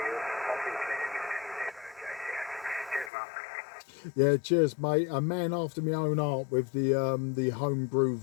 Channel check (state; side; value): drops out; right; at 3.1 s